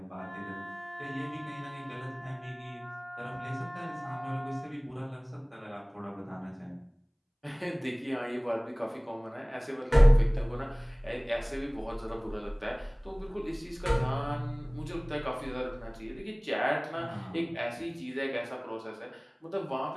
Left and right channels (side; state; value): both; identical; correlation 1.00